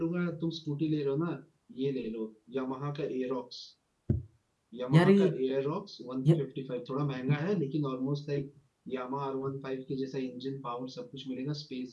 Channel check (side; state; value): both; identical; correlation 1.00